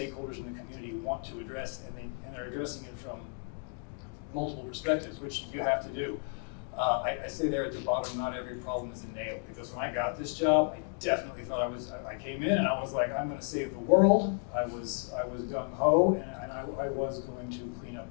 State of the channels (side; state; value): right; quieter; 39.9 dB